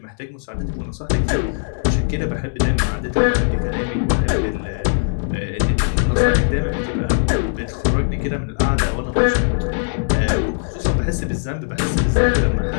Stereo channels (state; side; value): silent; right; 66 dB below the other